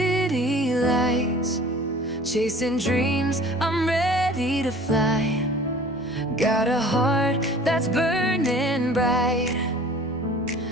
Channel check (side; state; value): both; normal; correlation 0.46